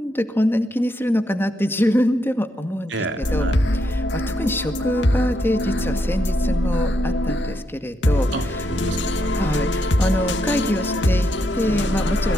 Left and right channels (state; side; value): normal; both; correlation 0.80